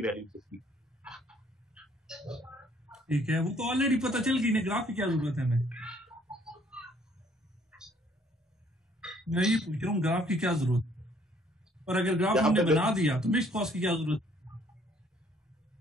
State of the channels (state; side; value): normal; both; correlation 0.63